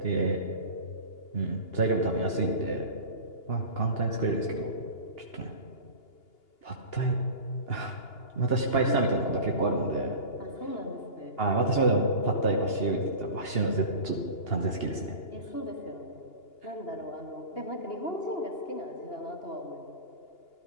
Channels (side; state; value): right; late; 2.8 ms